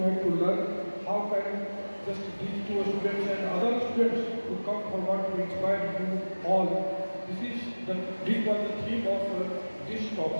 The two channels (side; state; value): both; inverted; correlation -1.00